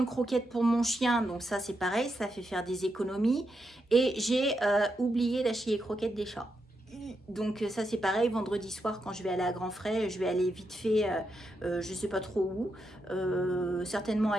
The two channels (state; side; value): normal; both; correlation 0.84